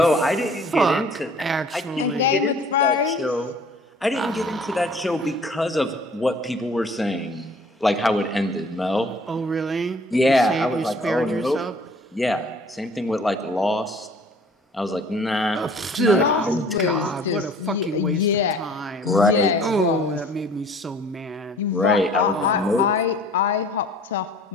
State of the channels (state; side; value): normal; both; correlation 0.52